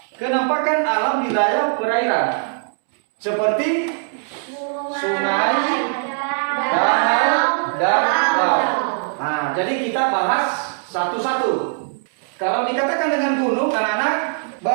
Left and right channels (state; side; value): silent; left; digital silence